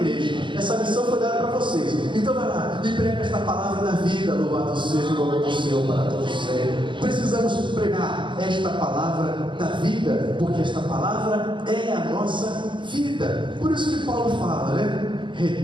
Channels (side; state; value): left; late; 0.23 ms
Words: essa missão foi dada para vocês. Então vai lá e prega esta palavra da vida. Louvado seja o nome do Senhor para todos sempre. Precisamos pregar esta palavra da vida, porque esta palavra é a nossa vida. Por isso que Paulo fala, né?